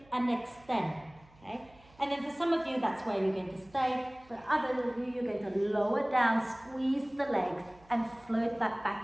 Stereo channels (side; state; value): right; noise; hum, 27 dB below the sound